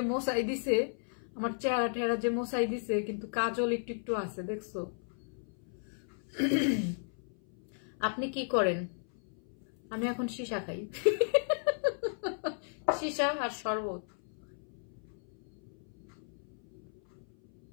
মশাই দিছে, আমার চেহারা টেহারা যে মশাই দিছে, কিন্তু কাজল একটু একটু আছে, দেখছো? আপনি কি করেন? আমি এখন সীসা খাই। সীসা আর শরবত।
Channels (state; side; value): silent; right; 55 dB below the other